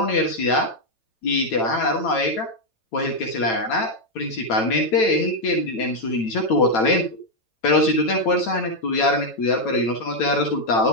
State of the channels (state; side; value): late; right; 9.0 ms